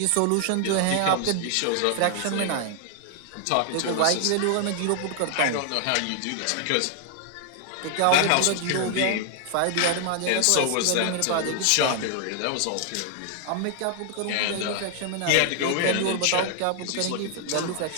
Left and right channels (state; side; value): different; both; correlation 0.00